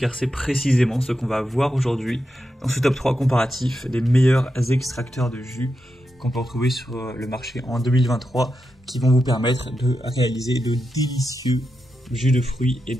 c'est précisément ce qu'on va voir aujourd'hui dans ce top 3 comparatif des meilleurs extracteurs de jus qu'on peut retrouver sur le marché en 2023 qui vont vous permettre de réaliser de délicieux jus de fruits et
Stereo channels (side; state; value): both; normal; correlation 0.87